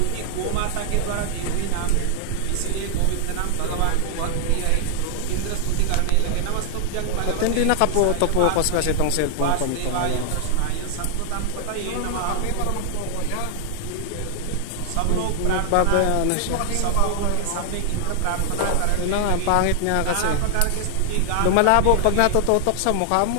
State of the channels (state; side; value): different; both; correlation 0.00